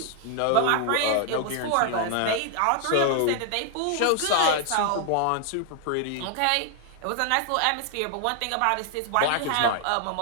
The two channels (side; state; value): both; different; correlation 0.00